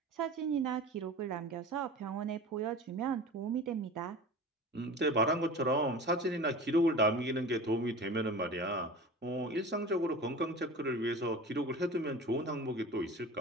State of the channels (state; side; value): normal; both; correlation 0.36